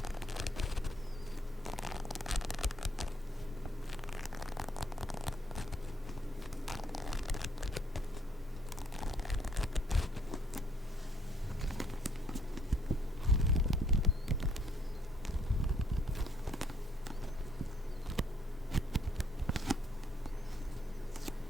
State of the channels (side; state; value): both; normal; correlation 0.67